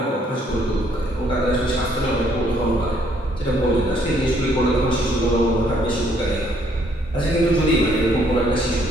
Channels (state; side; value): normal; both; correlation 0.67